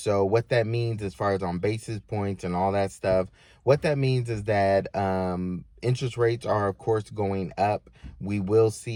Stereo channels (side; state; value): both; identical; correlation 1.00